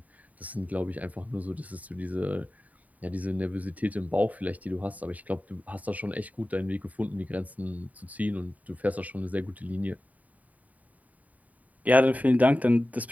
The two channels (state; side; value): late; left; 0.072 ms